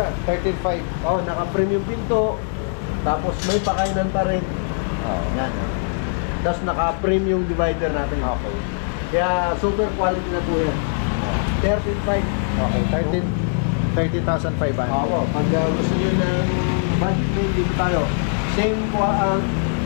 13.5. Oh, naka-frame yung pinto. Tapos may pakainan pa rin. Oo. Yan. Tapos naka-frame yung divider natin. Okay. Kaya super quality na po yan. 13.5. Okay, 30,500. Oo, pag gusto nyo ng budget meal, dito tayo.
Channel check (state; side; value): silent; right; digital silence